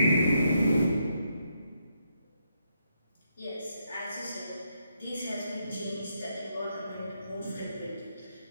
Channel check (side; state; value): both; inverted; correlation -0.78